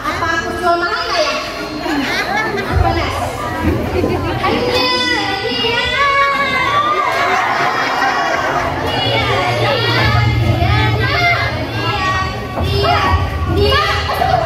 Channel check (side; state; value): both; identical; correlation 1.00